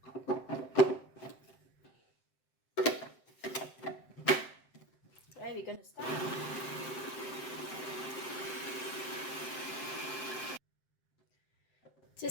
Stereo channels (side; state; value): right; late; 7.7 ms